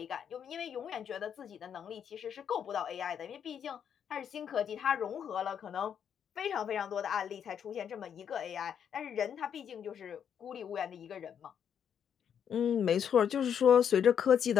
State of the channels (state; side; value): quieter; right; 8.3 dB